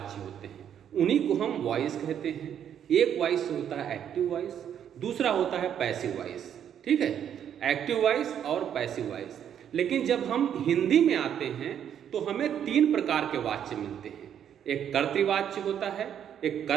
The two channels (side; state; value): left; quieter; 9.3 dB